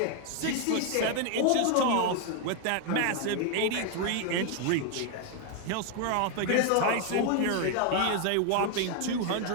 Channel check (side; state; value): both; different; correlation 0.01